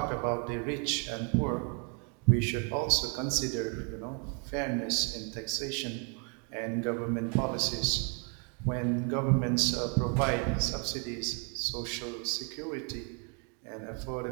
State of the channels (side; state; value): left; quieter; 38.4 dB